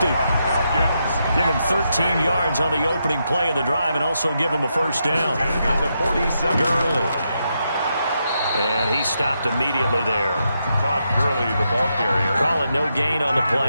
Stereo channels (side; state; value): both; inverted; correlation -0.82